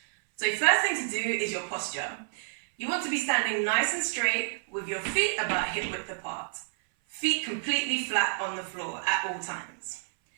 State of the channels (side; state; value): left; silent; 57 dB below the other